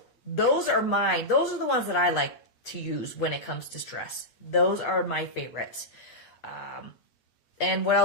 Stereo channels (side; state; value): right; late; 8.4 ms